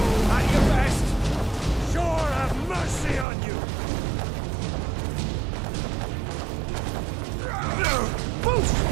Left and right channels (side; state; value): left; drops out; at 3.2 s